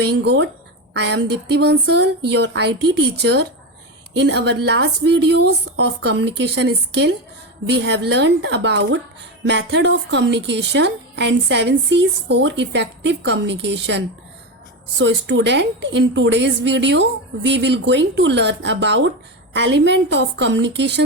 good. I am Dipti Bansal, your IT teacher. In our last videos of communication skill, we have learned about method of communication and 7 C's for effective communication. So student, in today's video, we will going to learn about element of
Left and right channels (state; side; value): normal; both; correlation 0.16